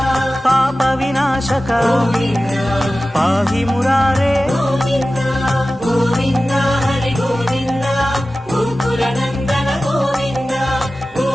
పాప వినాశక గోవింద పాహి మురారే గోవింద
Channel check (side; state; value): both; normal; correlation 0.95